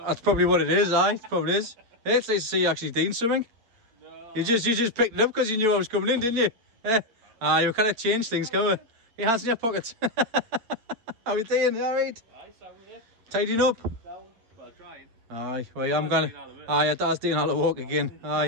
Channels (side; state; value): left; late; 8.9 ms